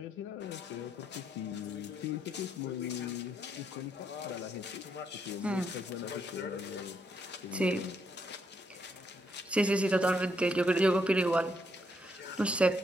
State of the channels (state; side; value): normal; both; correlation 0.75